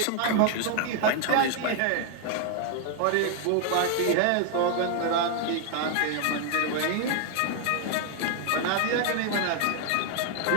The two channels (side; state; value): both; different; correlation 0.01